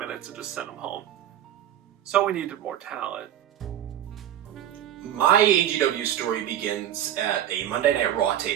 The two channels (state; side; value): quieter; left; 11.3 dB